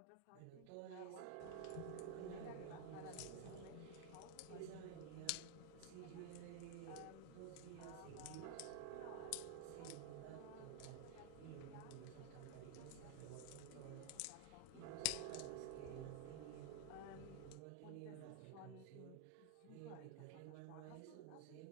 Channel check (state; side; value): different; both; correlation 0.00